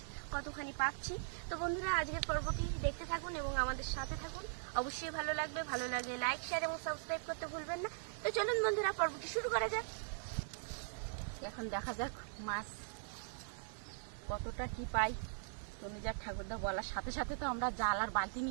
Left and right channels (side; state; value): left; silent; digital silence